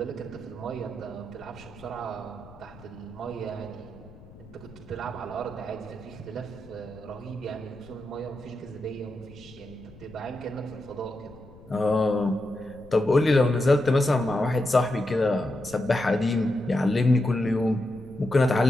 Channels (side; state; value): left; noise; rumble, 20 dB below the sound